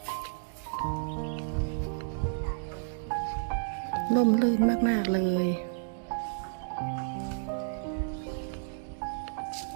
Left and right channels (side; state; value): left; silent; digital silence